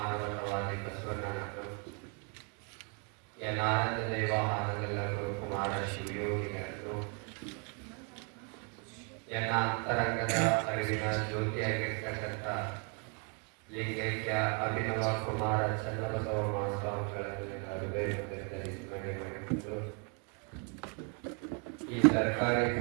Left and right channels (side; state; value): left; quieter; 37.2 dB